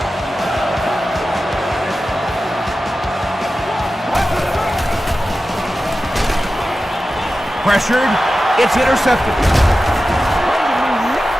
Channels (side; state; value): both; normal; correlation 0.94